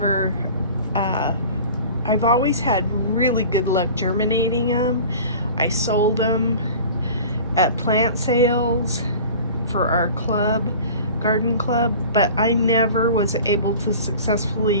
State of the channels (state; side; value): inverted; both; correlation -0.40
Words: always had really good luck germinating them. I sold them at plant sales for our club, garden club, but I never was able to